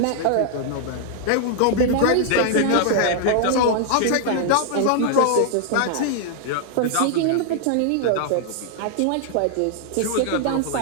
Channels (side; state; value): both; different; correlation 0.00